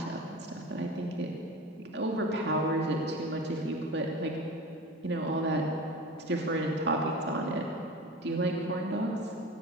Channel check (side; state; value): both; normal; correlation 0.33